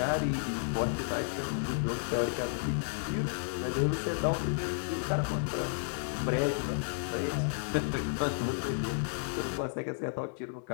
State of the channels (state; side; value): silent; right; digital silence